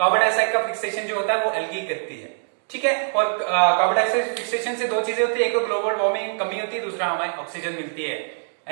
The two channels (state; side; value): silent; left; digital silence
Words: डाइऑक्साइड का फिक्सेशन जो होता है वो एल्गी करती है। ठीक है, और कार्बन डाइऑक्साइड फिक्सेशन से दो चीजें होती है, एक तो ग्लोबल वार्मिंग कमी होती है, दूसरा हमें ऑक्सीजन मिलती है